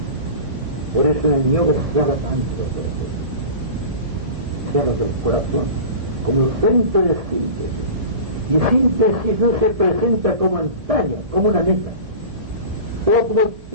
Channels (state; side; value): late; left; 1.7 ms